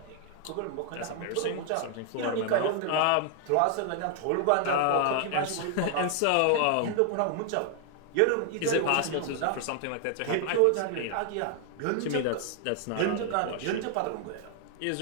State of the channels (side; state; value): both; different; correlation 0.00